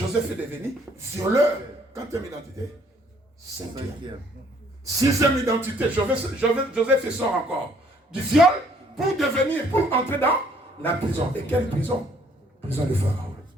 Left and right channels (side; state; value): both; normal; correlation 0.63